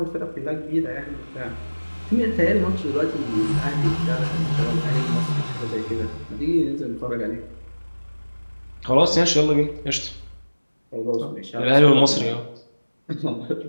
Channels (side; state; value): both; inverted; correlation -1.00